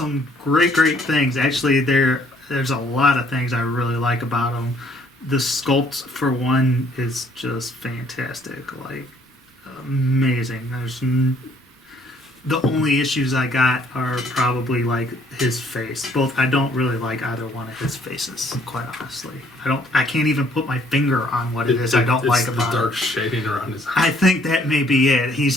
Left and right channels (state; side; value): normal; both; correlation 0.63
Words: great things. Actually, there's a lot of things I really like about him. The sculpt, for one, is just fantastic. Like, amazing. The only issues I got are probably like his face. I don't really like either one of his faces, quite honestly. I can't even put my finger on what it is I don't like about the dark it. shading around his eyes. I think that may be it. He's